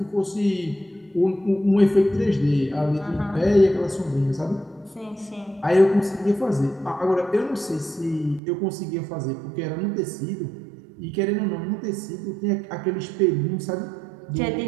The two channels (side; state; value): left; drops out; at 8.4 s